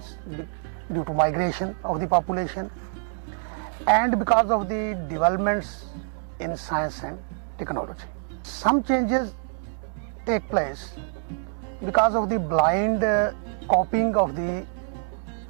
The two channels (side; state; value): left; silent; digital silence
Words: due to migration of the population, and because of the developments in science and technology. Some changes take place because of the blind copying of the